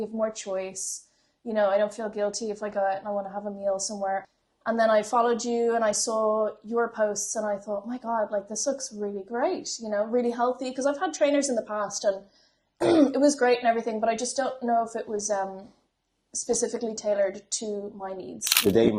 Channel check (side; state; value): both; identical; correlation 1.00